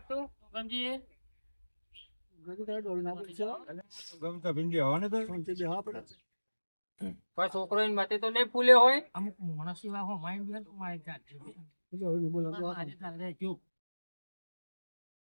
ગમજી ગમતા ભીંડી હવા ને તો કોઈ છોકરો એની મતે તો નહીં ફૂલ્યો હોય અમુક માણસ એવા હો માઇન્ડ બી તો મારી જાત છે આજે તારે જો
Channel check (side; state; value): both; inverted; correlation -1.00